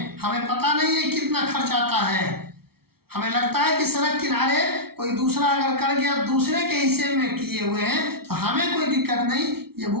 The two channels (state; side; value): late; left; 0.95 ms